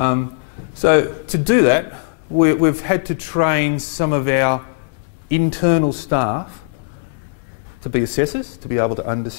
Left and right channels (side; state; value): right; quieter; 37.4 dB